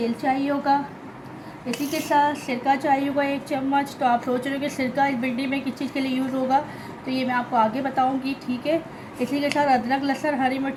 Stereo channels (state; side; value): identical; both; correlation 1.00